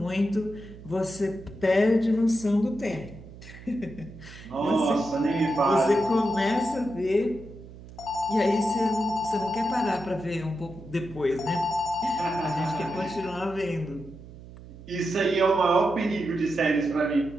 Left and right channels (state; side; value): noise; right; hum, 17 dB below the sound